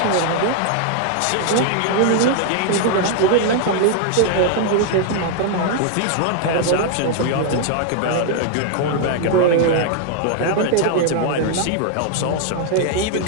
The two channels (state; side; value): different; both; correlation 0.00